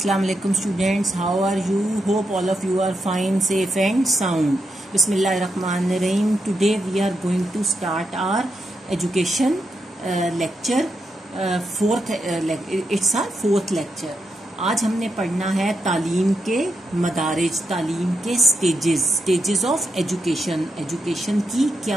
alaikum students, how are you? Hope all of you are fine, safe and sound. Bismillahirrahmanirrahim. Today we are going to start our education lecture. It's our fourth lecture. आज हमने पढ़ना है तालीम के मदारिज, तालीम के stages of education की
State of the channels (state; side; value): normal; both; correlation 0.84